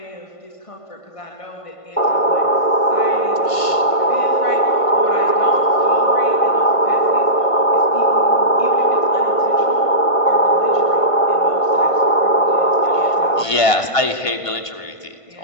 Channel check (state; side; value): late; right; 1.5 ms